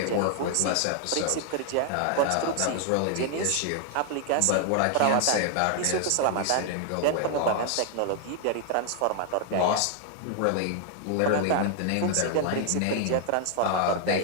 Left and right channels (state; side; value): different; both; correlation 0.00